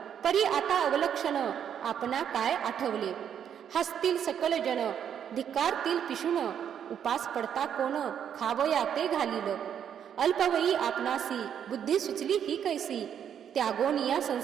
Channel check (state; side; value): quieter; left; 8.8 dB